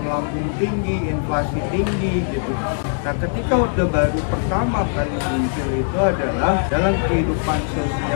melambung tinggi, inflasi tinggi gitu. Nah, ketika Orde Baru pertama kali muncul itu adalah dalam kehidupan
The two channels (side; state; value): right; silent; digital silence